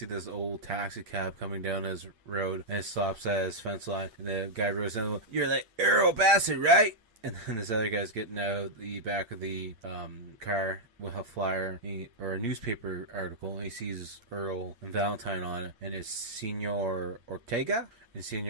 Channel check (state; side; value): late; left; 8.7 ms